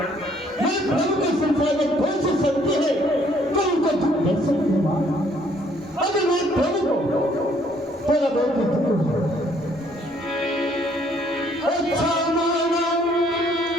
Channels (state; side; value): normal; both; correlation 0.64